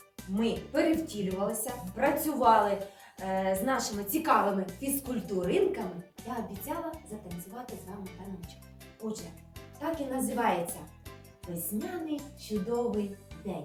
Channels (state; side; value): identical; both; correlation 1.00